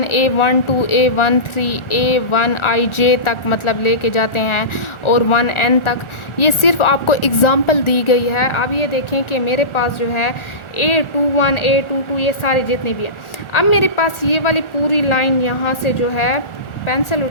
A12 A13 A1IJ तक मतलब लेके जाते हैं और 1N तक। ये सिर्फ आपको एग्जांपल दी गई है। अब ये देखें कि मेरे पास जो है A21 A22 ये सारे जितने भी हैं। अब मेरे पास ये वाली पूरी लाइन यहाँ से जो है, पेंसिल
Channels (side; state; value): right; late; 1.4 ms